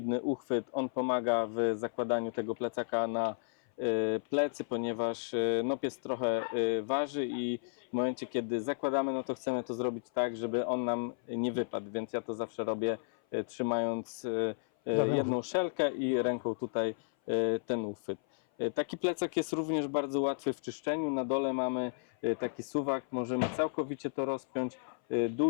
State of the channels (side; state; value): right; silent; 56 dB below the other